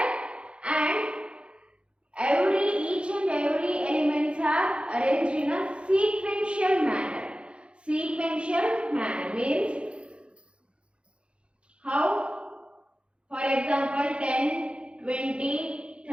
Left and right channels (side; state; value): left; late; 0.058 ms